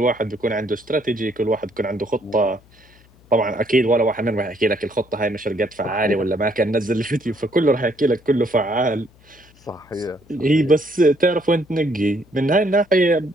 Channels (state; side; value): noise; left; hum, 29 dB below the sound